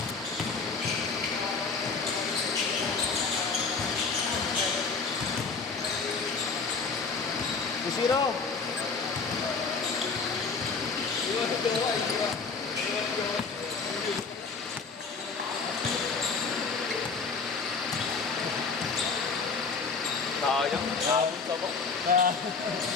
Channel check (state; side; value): quieter; right; 4.8 dB